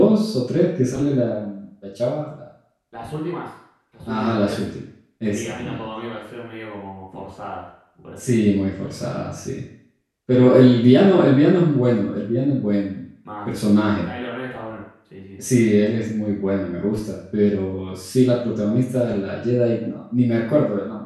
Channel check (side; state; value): both; identical; correlation 1.00